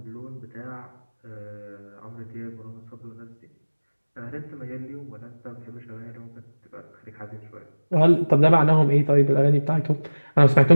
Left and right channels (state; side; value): inverted; both; correlation -1.00